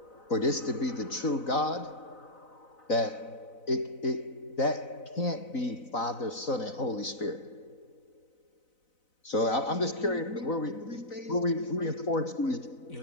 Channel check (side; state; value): right; late; 4.0 ms